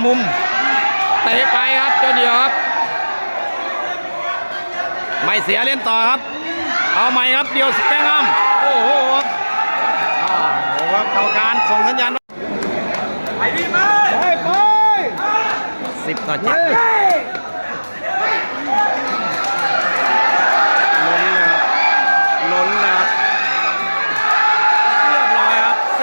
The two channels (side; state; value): both; inverted; correlation -1.00